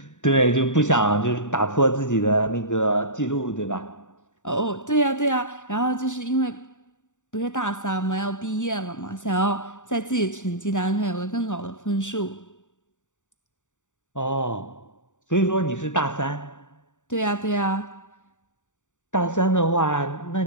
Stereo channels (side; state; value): right; late; 0.86 ms